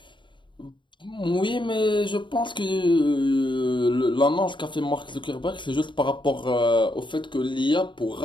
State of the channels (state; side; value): late; right; 0.23 ms